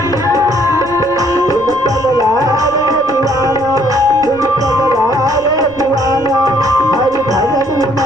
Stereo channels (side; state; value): right; noise; rumble, 20 dB below the sound